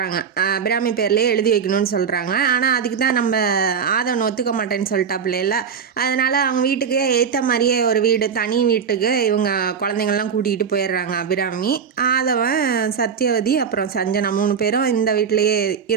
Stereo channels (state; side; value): quieter; left; 6.8 dB